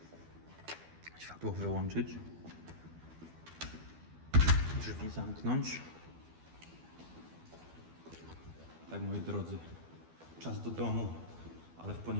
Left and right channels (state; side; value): late; left; 12 ms